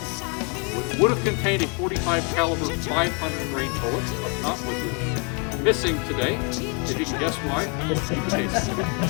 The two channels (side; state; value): right; quieter; 34.6 dB